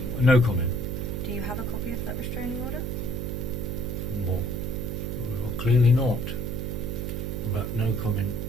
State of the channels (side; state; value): right; noise; hum, 3 dB below the sound